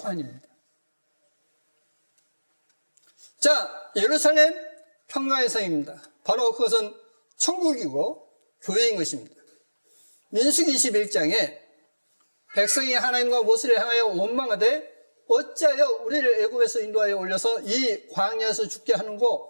아닙니다. 자, 예루살렘 평강의 성입니다. 바로 그것은 천국이고 교회인 것입니다. 민수기 21장에 백성이 하나님과 모세를 향하여 원망하되 어찌하여 우리를 애굽에서 인도하여 올려서 이 광야에서 죽게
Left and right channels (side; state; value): both; inverted; correlation -1.00